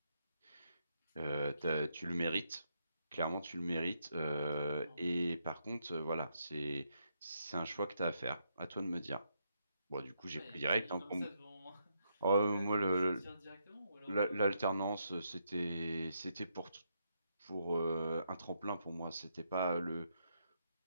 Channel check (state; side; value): inverted; both; correlation -0.79